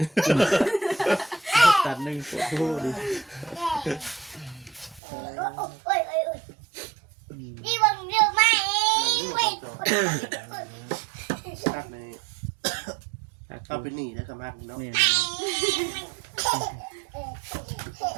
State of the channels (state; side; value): drops out; left; at 5.0 s